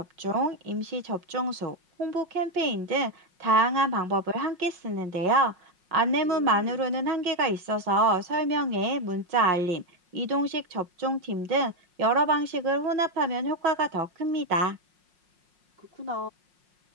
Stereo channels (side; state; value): left; late; 5.5 ms